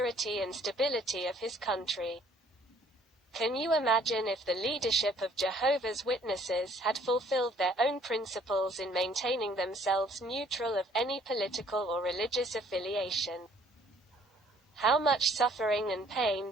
and stability of his country. Can you imagine if the leadership of Jehovah's Witnesses had fulfilled their own principles in maintaining themselves neutral of any political or religious affiliation? How much suffering and pain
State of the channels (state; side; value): normal; both; correlation 0.60